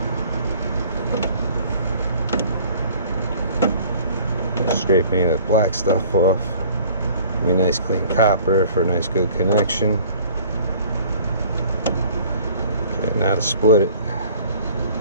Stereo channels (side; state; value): both; inverted; correlation -0.50